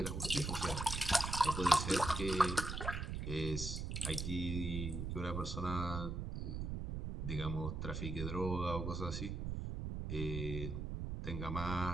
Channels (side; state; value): right; noise; rumble, 3 dB below the sound